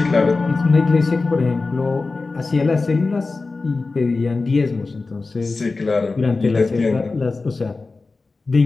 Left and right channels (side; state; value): right; quieter; 3.8 dB